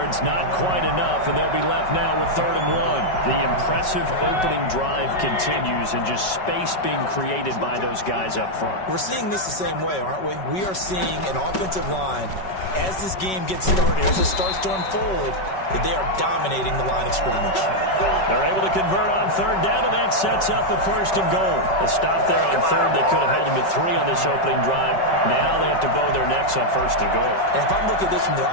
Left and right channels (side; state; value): right; late; 5.3 ms